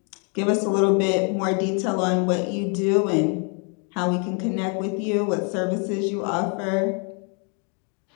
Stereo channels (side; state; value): right; quieter; 37.9 dB